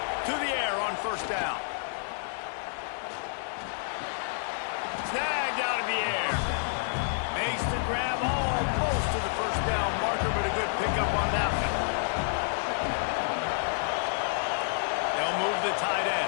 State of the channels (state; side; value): silent; right; digital silence